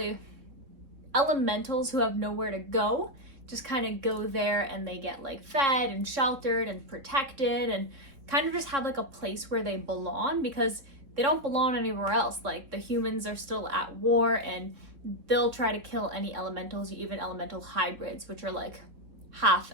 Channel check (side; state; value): left; late; 3.6 ms